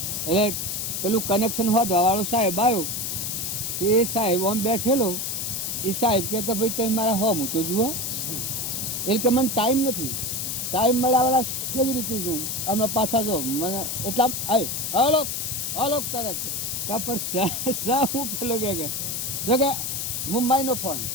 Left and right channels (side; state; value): left; noise; hiss, 2 dB below the sound